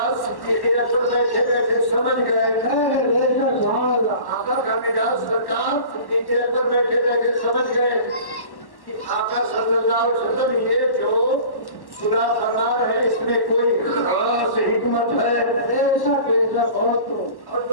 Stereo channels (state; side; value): late; right; 1.1 ms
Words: صدیق اکبر بیٹھے بیٹھے سمجھ گئے، آقا کا مزاج سرکار صدیق اکبر بیٹھے بیٹھے سمجھ گئے کہ آقا صلی اللہ علیہ وسلم یہ جو خدا فرما ہے اس میں کوئی خاص حکمت ہے. ایسا بہت اور